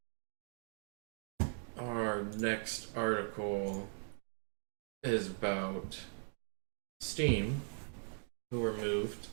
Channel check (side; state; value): left; silent; 51 dB below the other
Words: Our next article is about Steam, who removed